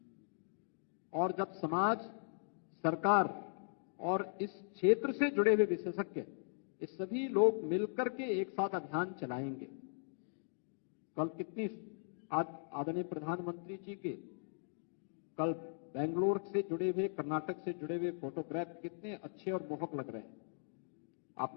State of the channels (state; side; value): silent; right; digital silence